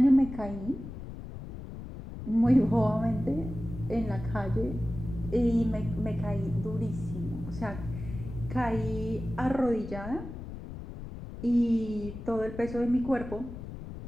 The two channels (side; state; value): left; noise; rumble, 10 dB below the sound